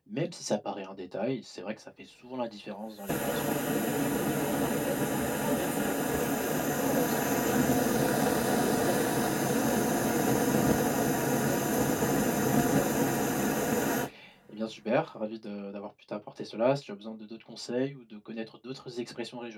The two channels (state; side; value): identical; both; correlation 1.00